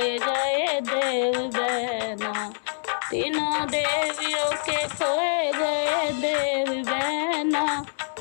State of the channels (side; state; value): right; silent; digital silence